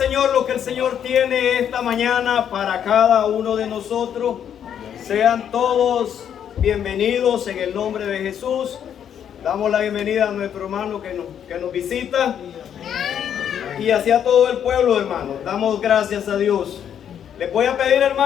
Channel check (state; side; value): quieter; right; 9.0 dB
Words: lo que el Señor tiene esta mañana para cada uno de nosotros. Sean todos bienvenidos en el nombre de Jesús. Damos la bienvenida a nuestro hermano que nos visita, y hacia todo el pueblo, hermanos. Damos gracias a Dios. Les voy a pedir,